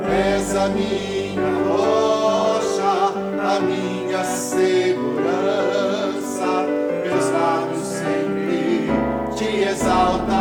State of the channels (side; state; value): both; identical; correlation 1.00